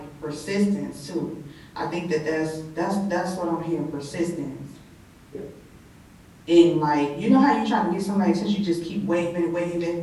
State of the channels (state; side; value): identical; both; correlation 1.00